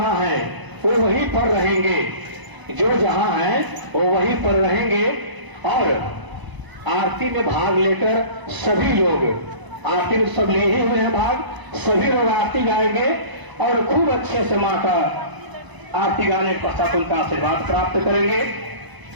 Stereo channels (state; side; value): late; left; 1.0 ms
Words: है वो वहीं पर रहेंगे, जो जहाँ है वो वहीं पर रहेंगे और आरती में भाग लेकर सभी लोग आरती में सब ले ही हुए हैं भाग, सभी लोग आरती गाएंगे और खूब अच्छे से माँ का आरती गाने के पश्चात उनका आशीर्वाद प्राप्त करेंगे।